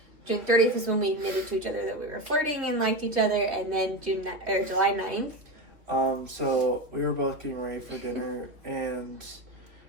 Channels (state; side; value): late; left; 2.9 ms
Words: June 30th was when we admitted to each other that we were flirting and liked each other, and then July 9th. So we were both getting ready for dinner, and